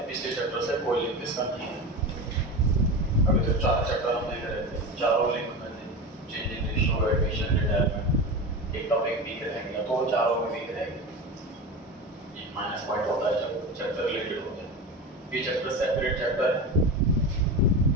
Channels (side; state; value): both; normal; correlation 0.25